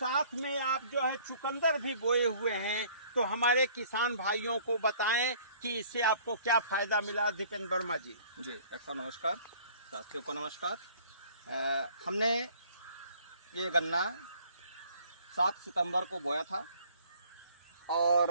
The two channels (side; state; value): both; inverted; correlation -0.55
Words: में आप जो है चुकंदर भी बोए हुए हैं, तो हमारे किसान भाइयों को बताएं कि इससे आपको क्या फ़ायदा मिला। दीपेंद्र वर्मा जी। जी डॉक्टर नमस्कार, साथियों को नमस्कार। हमने ये गन्ना 7 सितंबर को बोया था और